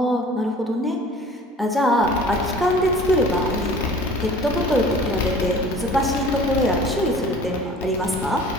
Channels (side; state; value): both; normal; correlation 0.46